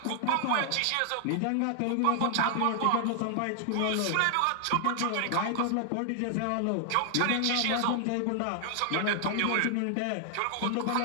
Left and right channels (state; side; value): different; both; correlation 0.00